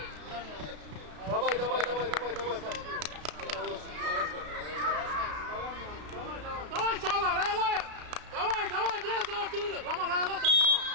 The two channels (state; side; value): late; left; 33 ms